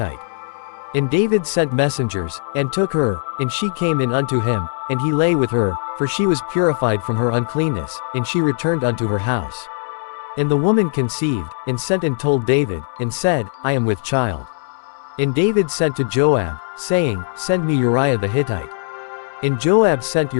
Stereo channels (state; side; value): silent; right; digital silence